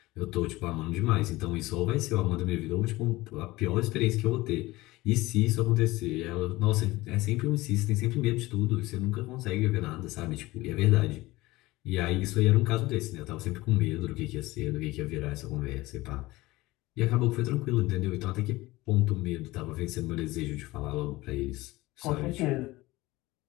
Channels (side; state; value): right; quieter; 19.5 dB